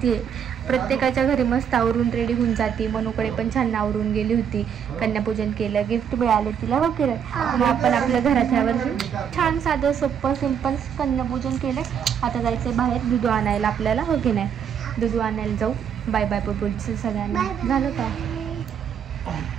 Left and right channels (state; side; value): quieter; left; 8.0 dB